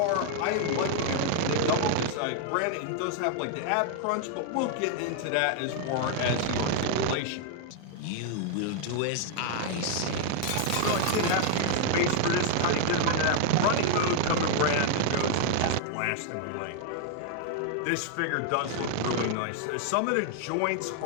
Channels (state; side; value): different; both; correlation 0.00